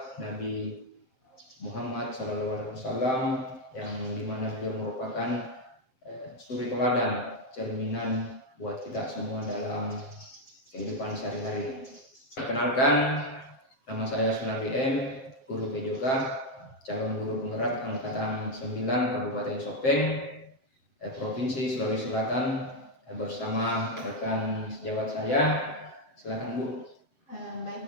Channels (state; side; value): late; right; 7.6 ms